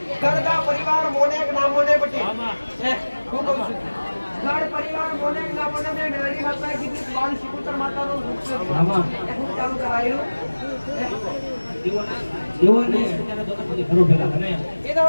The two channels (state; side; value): inverted; both; correlation -1.00